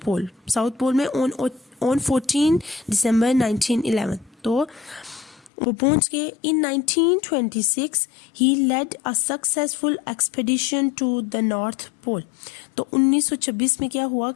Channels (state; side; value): drops out; right; at 5.5 s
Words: पोल में ऑन 14 दिसंबर 1911. तो वो पहुंच गए। In 1926 he led a successful expedition to the north Pole. तो 1926 में क्या हुआ